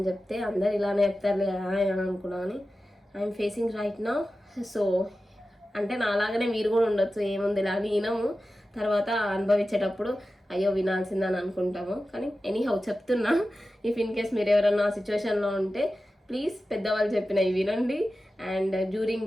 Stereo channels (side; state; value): both; normal; correlation 0.94